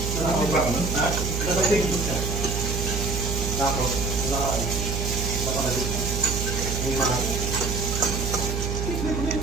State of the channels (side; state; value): right; noise; hum, 1 dB below the sound